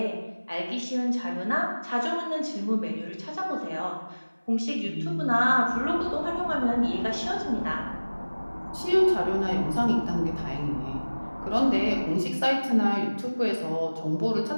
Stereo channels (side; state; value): both; inverted; correlation -1.00